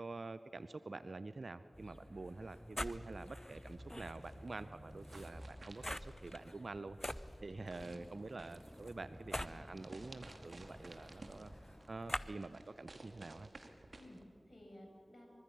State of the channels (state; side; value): normal; both; correlation 0.97